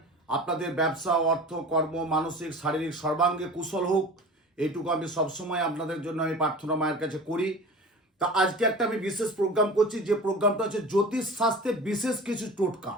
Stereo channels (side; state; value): both; normal; correlation 0.37